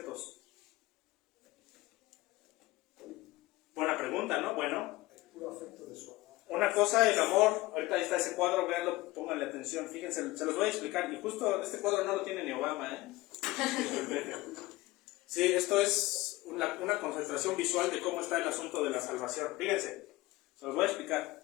Buena pregunta, ¿no? Bueno, una cosa, el amor. Ahorita ahí está ese cuadro, véanlo, pónganle atención, fíjense, se los voy a explicar. Y justo este cuadro no lo tiene ni Obama, Sí, esto es una concentración visual de cómo está el asunto de la salvación. Fíjense, se los voy a explicar.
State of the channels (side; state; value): right; quieter; 19.4 dB